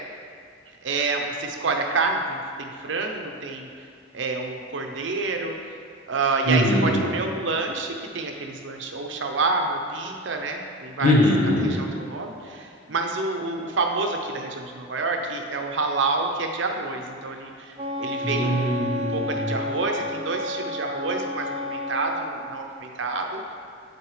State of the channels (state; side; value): normal; both; correlation 0.17